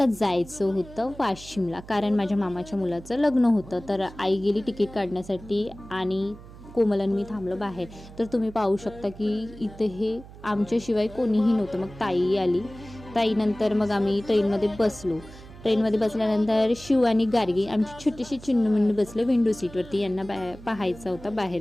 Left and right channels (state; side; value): noise; right; hum, 18 dB below the sound